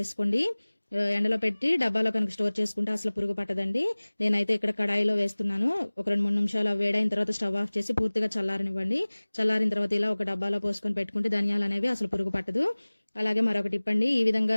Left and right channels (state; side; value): inverted; both; correlation -1.00